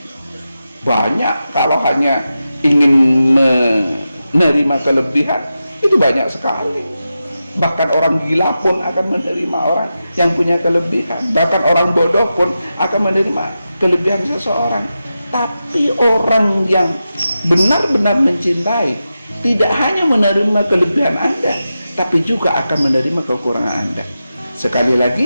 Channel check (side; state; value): both; inverted; correlation -0.91